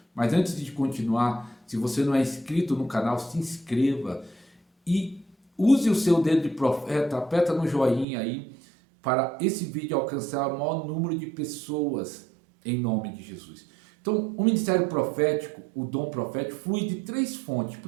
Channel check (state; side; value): drops out; left; at 8.1 s